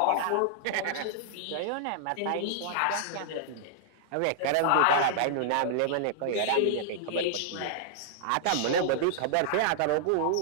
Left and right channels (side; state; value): both; different; correlation -0.01